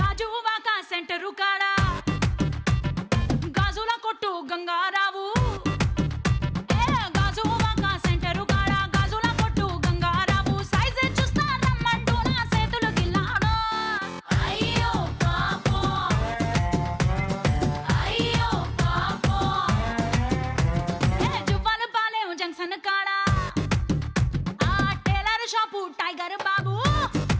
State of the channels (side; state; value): both; identical; correlation 1.00